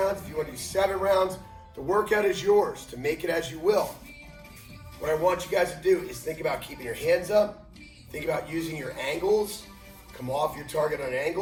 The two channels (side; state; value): both; identical; correlation 1.00